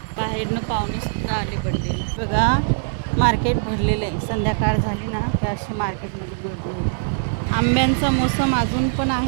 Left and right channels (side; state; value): left; silent; 60 dB below the other